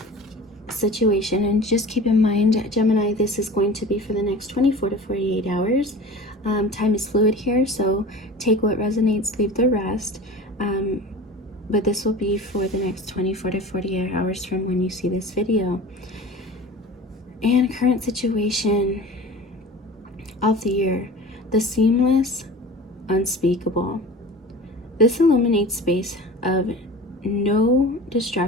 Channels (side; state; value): both; normal; correlation 0.37